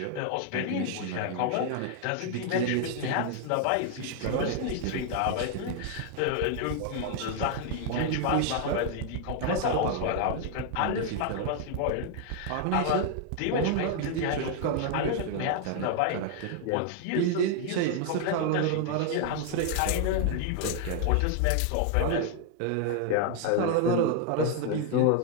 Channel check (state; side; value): different; both; correlation 0.00